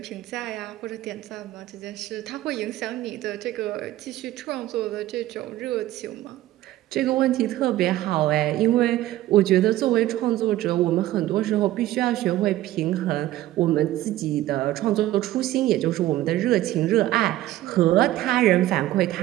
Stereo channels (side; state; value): left; quieter; 15.0 dB